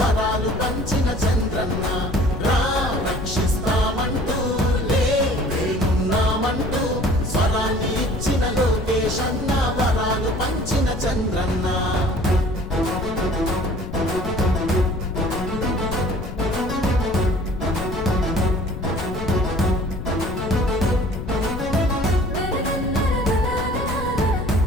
పంచిన చంద్రన్న. రక్షిస్తామంటూ లేమున్నామంటూ స్వరాన్ని ఇచ్చిన లోకేశన్న, వరాలు పంచిన చంద్రన్న.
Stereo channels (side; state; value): left; noise; rumble, 7 dB below the sound